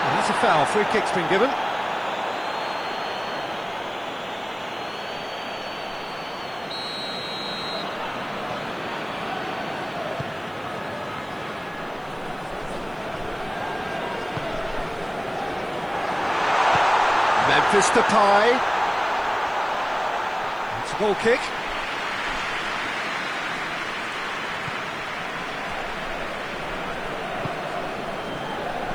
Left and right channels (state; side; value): noise; right; hiss, 29 dB below the sound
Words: that's a foul. Free kick's been given. Memphis Depay. It's a goal kick.